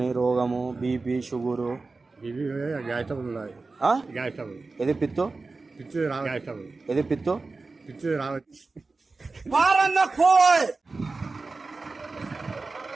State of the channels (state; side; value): quieter; left; 3.8 dB